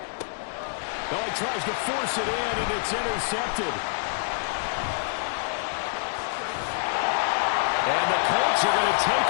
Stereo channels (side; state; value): right; silent; digital silence